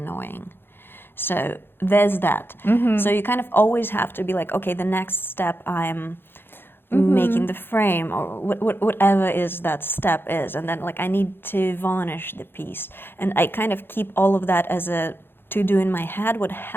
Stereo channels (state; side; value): late; right; 0.10 ms